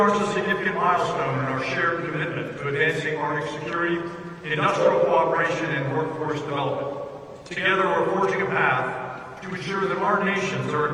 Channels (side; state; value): both; identical; correlation 1.00